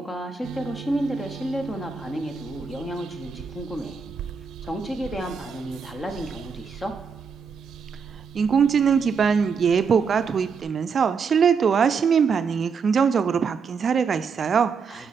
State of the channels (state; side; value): quieter; left; 5.7 dB